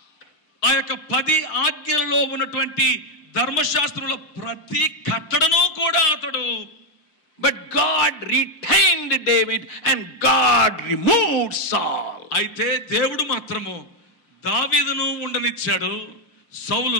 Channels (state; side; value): late; right; 6.5 ms